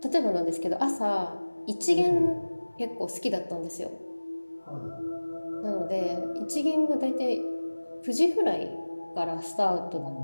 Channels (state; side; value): inverted; both; correlation -1.00